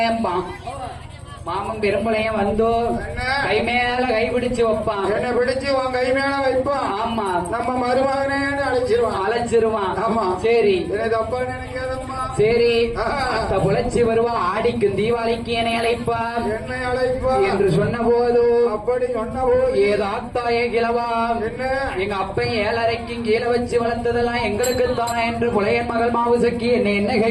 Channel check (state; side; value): identical; both; correlation 1.00